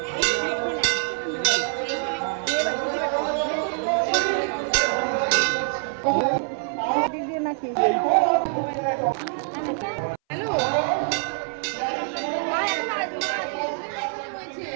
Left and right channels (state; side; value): silent; left; 60 dB below the other